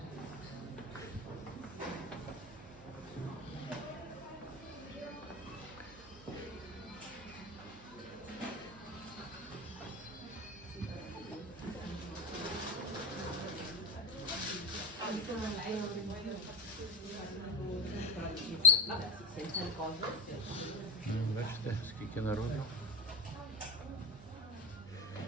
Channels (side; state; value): right; noise; hum, 18 dB below the sound